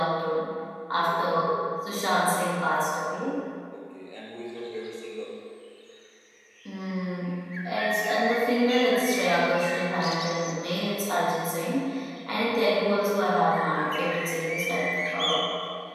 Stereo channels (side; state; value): both; identical; correlation 1.00